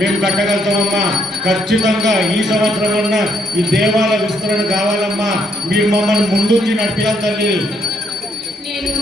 మేము కట్టగలుగుతామమ్మా. ఖచ్చితంగా ఈ సంవత్సరం అన్నా ఈ దేవాలయ విస్తరణ కావాలమ్మా. మీరు మమ్మల్ని ముందుంచి నడిపియాలి తల్లి.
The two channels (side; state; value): both; normal; correlation 0.72